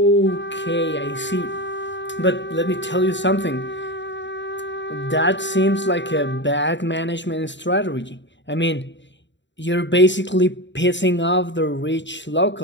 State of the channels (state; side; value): late; right; 0.53 ms